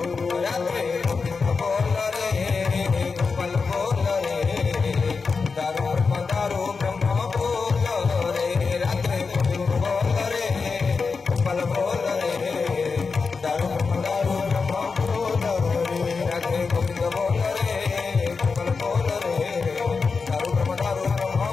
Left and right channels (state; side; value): quieter; right; 4.8 dB